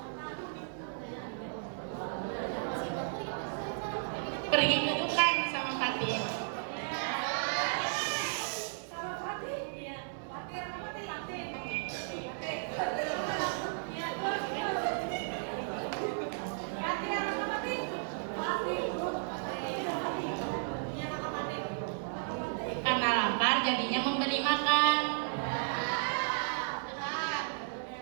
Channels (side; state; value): left; silent; digital silence